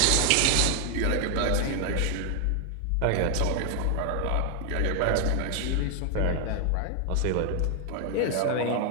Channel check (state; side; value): different; both; correlation 0.00